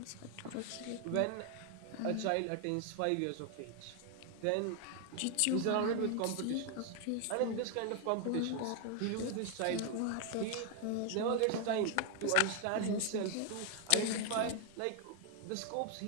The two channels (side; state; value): both; different; correlation 0.01